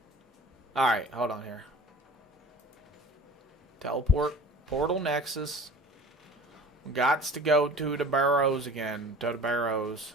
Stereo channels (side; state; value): both; normal; correlation 0.42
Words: Alright, hold on here. Teleport. Portal Nexus. Gots to go to the barrows again. To the barrows.